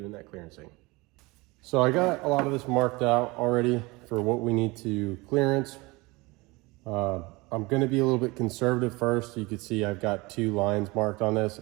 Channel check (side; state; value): left; quieter; 23.8 dB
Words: that clearancing. So I got a lot of this marked out already for what we need to clearance. I'm going to be a little bit conservative first. You can see I've got two lines marked on this,